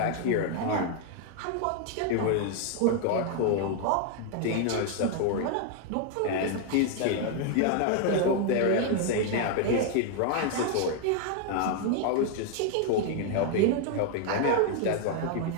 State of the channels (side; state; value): both; different; correlation 0.00